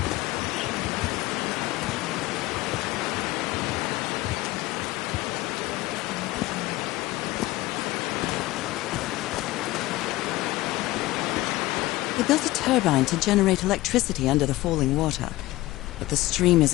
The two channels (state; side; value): quieter; right; 18.4 dB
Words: They built a turbine to generate electricity under the falling water, but the stream